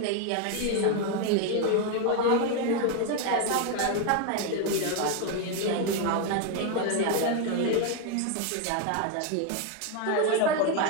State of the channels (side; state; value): both; different; correlation 0.01